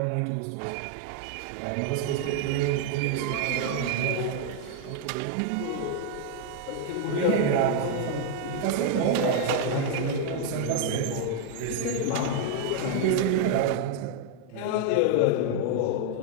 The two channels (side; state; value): both; different; correlation 0.00